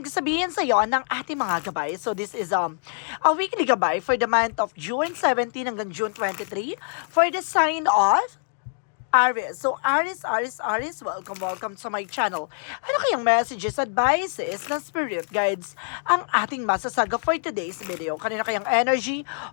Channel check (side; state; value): right; silent; digital silence